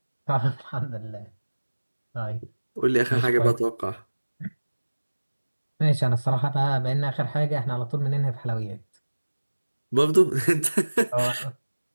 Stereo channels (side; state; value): both; inverted; correlation -1.00